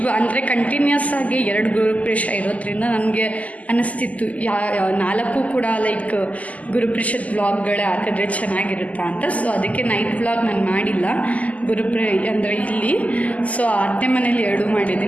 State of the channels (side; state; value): right; late; 0.073 ms